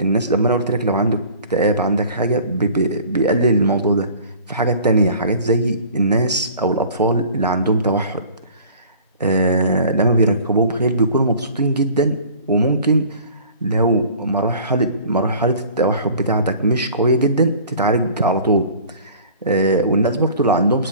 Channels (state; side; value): inverted; both; correlation -0.47